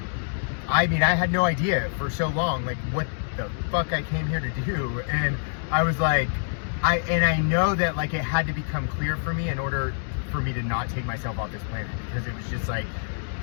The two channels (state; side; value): silent; right; digital silence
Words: had no idea for so long, like, what the fuck I came here to do. And I was like, I know that, like, it had to become clear for me in order for me to not take myself off this planet, because it was just like,